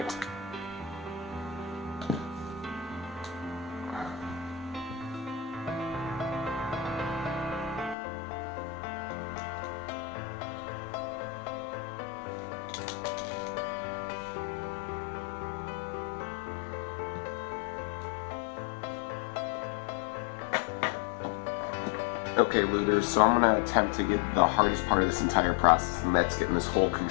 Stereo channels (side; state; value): right; drops out; at 8.0 s